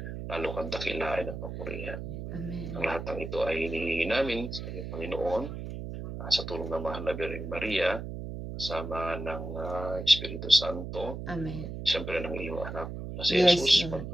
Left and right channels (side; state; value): right; noise; hum, 7 dB below the sound